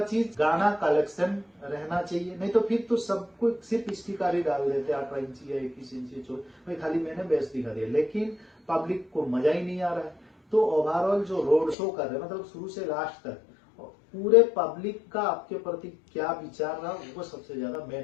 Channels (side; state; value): right; drops out; at 11.8 s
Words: चीज गाना कलेक्शन रहना चाहिए। नहीं तो फिर तो सबको सिर्फ स्टिकारी डाल देते 18 इंची या 21 इंची भाई खाली मैंने बेस दिखा दिया, लेकिन पब्लिक को मजा ही नहीं आ रहा है। तो ओवरऑल जो रोड शो कर रहे हैं मतलब शुरू से लास्ट तक पूरे पब्लिक का आपके प्रति क्या विचार रहा वो सबसे ज्यादा मेन